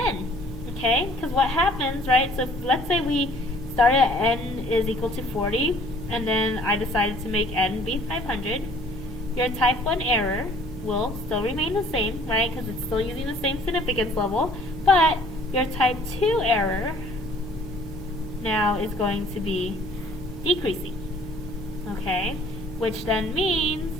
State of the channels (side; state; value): both; normal; correlation 0.55